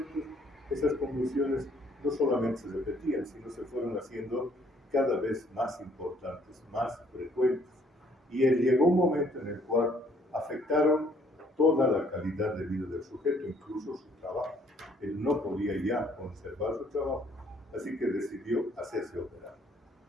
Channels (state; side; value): normal; both; correlation 0.64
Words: esas convulsiones no solamente se repetían, sino se fueron haciendo cada vez más importantes, más frecuentes. Y llegó un momento en el cual afectaron toda la calidad de vida del sujeto, incluso su trabajo. Él no podía ya conservar su trabajo, así que decidió hacerse operar.